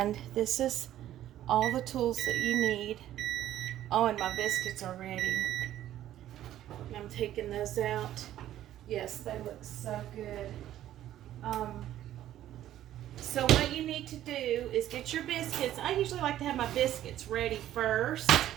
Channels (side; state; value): left; quieter; 12.6 dB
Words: this is all the tools that you need. Oh, and my biscuits are ready. I'm taking those out. Yes, they look so good. So what you need to do is get your biscuits. I usually like to have my biscuits ready first.